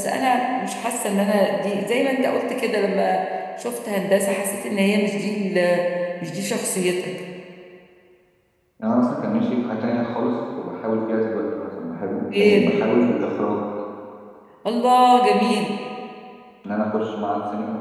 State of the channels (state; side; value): identical; both; correlation 1.00